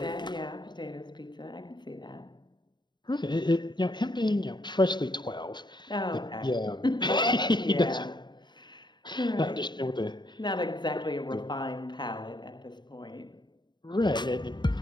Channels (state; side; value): late; right; 0.22 ms